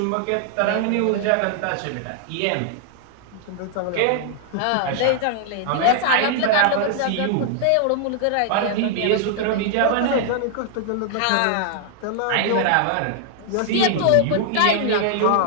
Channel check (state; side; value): different; both; correlation -0.01